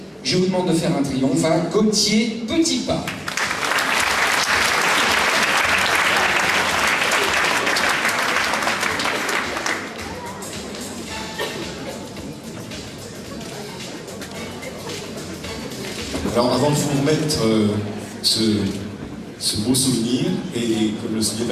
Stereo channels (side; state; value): both; identical; correlation 1.00